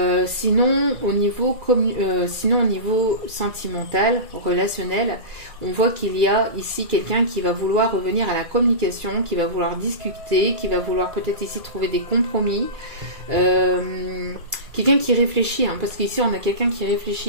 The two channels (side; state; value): left; late; 2.3 ms